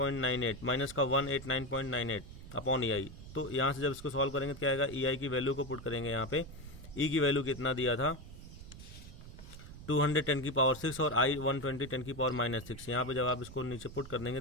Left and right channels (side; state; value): right; noise; rumble, 14 dB below the sound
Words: माइनस का 189.98 अपॉन ई आई। तो यहाँ से जब इसको सॉल्व करेंगे तो क्या आएगा, ई आई की वैल्यू को पुट करेंगे यहाँ पे, ई की वैल्यू कितना दिया था 200 10 की पावर 6 और आई 120 10 की पावर माइनस 6। यहाँ पे जब आप इसको नीचे पुट कर देंगे